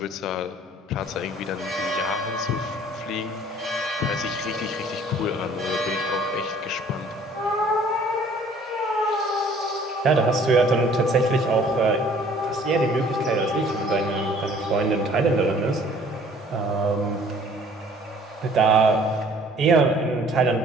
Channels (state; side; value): normal; both; correlation 0.55